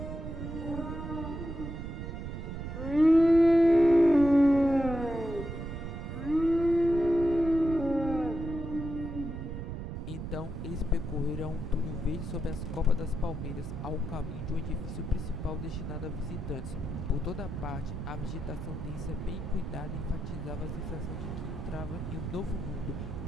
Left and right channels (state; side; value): noise; right; rumble, 6 dB below the sound